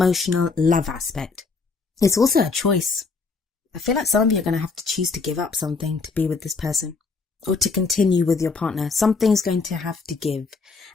love aspect. It's also a choice. I feel like some of you are going to have to choose to give up something to be with this person, or to continue with your partner. Something's going to have to give.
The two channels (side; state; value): right; quieter; 4.4 dB